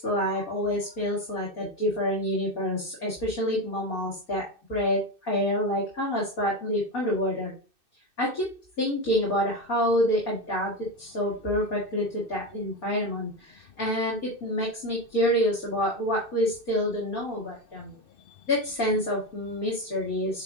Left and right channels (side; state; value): right; late; 2.6 ms